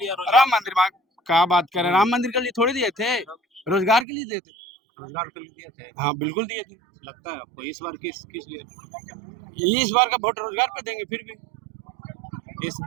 राम मंदिर मांग क्या बात करें? राम मंदिर के लिए थोड़ी दिए थे, रोजगार के लिए दिए थे। रोजगार के लिए दिए थे, हाँ बिल्कुल दिए थे। लगता है आपको इस बार किस लिए? इस बार का वोट रोजगार पे देंगे। फिर भी इस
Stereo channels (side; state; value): left; drops out; at 4.0 s